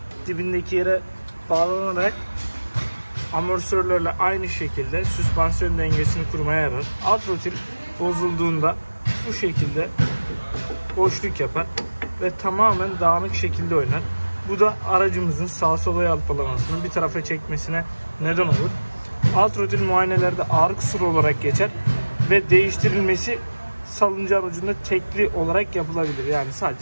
dibindeki yere bağlanarak amortisörlerle aynı şekilde süspansiyon dengesini kurmaya yarar. Alt rotil bozulduğunda bu şekilde boşluk yapar ve tamamen dağınık şekilde oynar. Bu da aracımızın sağa sola yalpalamasını bir tarafa çekmesine neden olur. Alt rotil muayenelerde ağır kusur olarak geçer ve değiştirilmesi salıncağın ucunda tekli olarak yapılabilir. Yani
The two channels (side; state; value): both; inverted; correlation -1.00